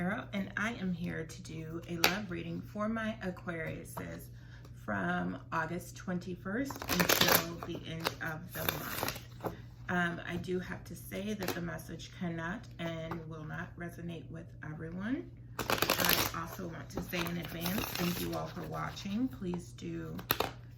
and I am here to do a love reading for my Aquariuses from August 21st until the end of the month. I do have to say that the message cannot and will not resonate with everyone. I also want to say in advance, thank you all for watching. Please do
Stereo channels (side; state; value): both; identical; correlation 1.00